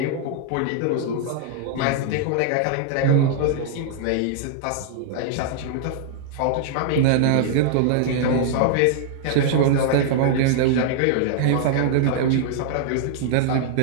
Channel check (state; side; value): different; both; correlation -0.01